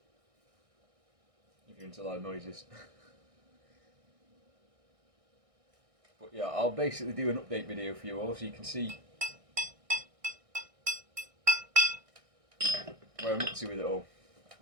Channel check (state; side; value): late; left; 1.6 ms